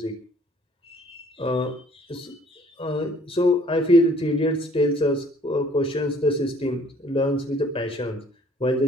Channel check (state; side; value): normal; both; correlation 0.58